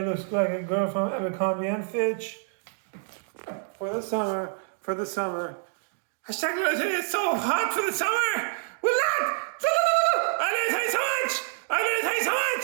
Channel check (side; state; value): left; silent; 60 dB below the other